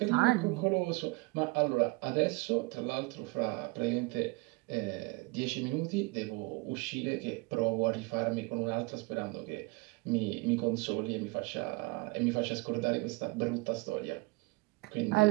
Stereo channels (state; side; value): quieter; left; 25.3 dB